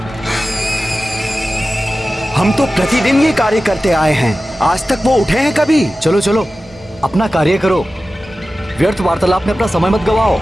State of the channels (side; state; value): both; normal; correlation 0.95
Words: हम तो प्रतिदिन ये कार्य करते आए हैं, आज तक वो उठे हैं कभी? चलो चलो अपना कार्य करो, व्यर्थ वार्तालाप में अपना समय मत गवाओ।